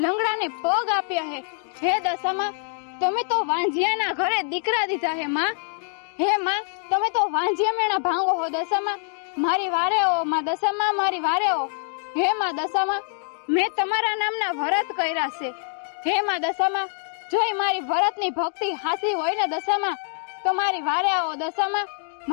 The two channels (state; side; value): silent; right; 59 dB below the other